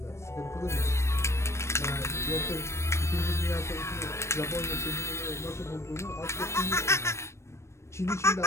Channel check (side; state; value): right; late; 0.13 ms